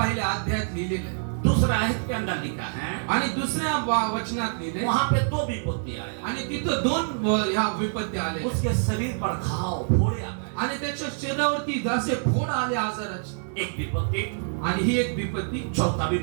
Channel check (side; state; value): left; silent; digital silence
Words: अध्यायात लिहिलेलं आहे. दूसरा आयत के अंदर लिखा है, आणि दुसऱ्या वचनात लिहिले, वहां पे 2 विपत्ति आया. आणि तिथं 2 ह्या विपत्ती आले. उसके शरीर पर घाव फोड़े आ गए. आणि त्याच्या शरीरावरती जसे फोड आले आजाराचे. एक विपत्ति. आणि ही एक विपत्ती. चौथा